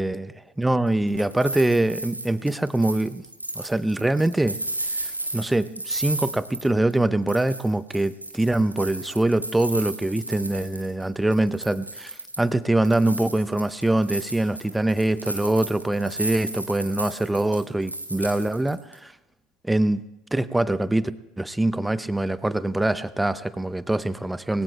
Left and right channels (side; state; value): both; normal; correlation 0.89